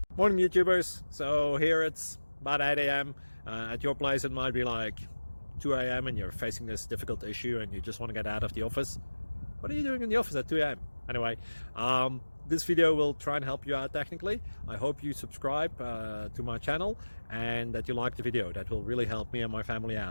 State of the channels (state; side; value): inverted; both; correlation -1.00